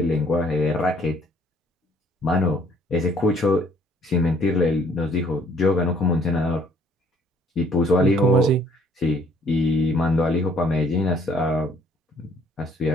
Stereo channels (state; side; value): normal; both; correlation 0.60